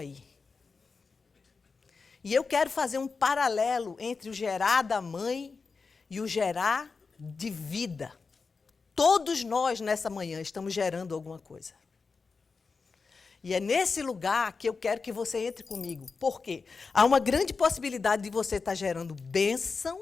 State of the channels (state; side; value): quieter; right; 4.7 dB